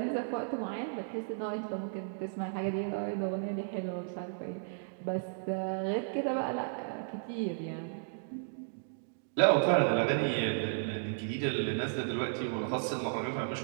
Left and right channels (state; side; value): silent; left; digital silence